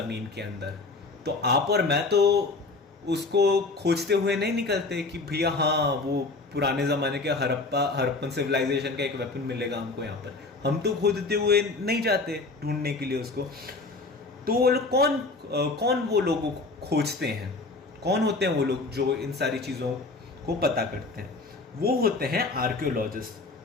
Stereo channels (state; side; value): quieter; right; 3.5 dB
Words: के अंदर. तो आप और मैं तो उसको खोजते हुए नहीं निकलते कि भैया हाँ वो पुराने ज़माने के हड़प्पन सिविलाइजेशन का एक वेपन मिलेगा हमको यहाँ पर। हम तो खोजते हुए नहीं जाते ढूंढने के लिए उसको। तो वो लोग कौन वो लोगों को खोजते हैं, कौन होते हैं वो लोग जो इन सारी चीज़ों को पता करते हैं? वो होते हैं आर्कियोलॉजिस्ट।